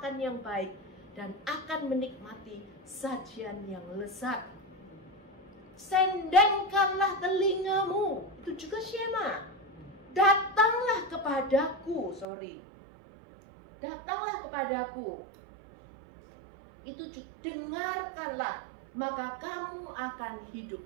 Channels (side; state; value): left; drops out; at 12.2 s